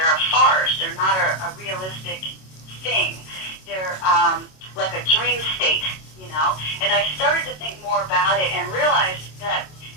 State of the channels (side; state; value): right; late; 27 ms